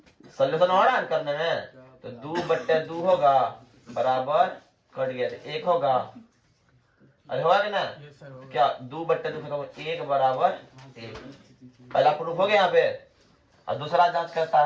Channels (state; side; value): identical; both; correlation 1.00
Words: सोल्यूशन हो रहा है करने में? तो 2/2 होगा बराबर, कट गया तो 1 होगा। अरे होगा कि ना? क्या 2/2 1 बराबर 1। पहला प्रूफ हो गया यहाँ पे। और दूसरा जांच करता